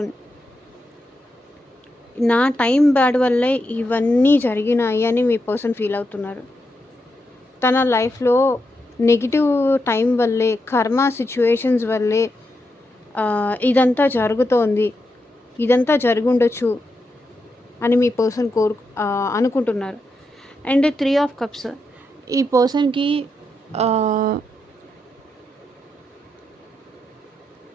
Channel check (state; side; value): normal; both; correlation 0.85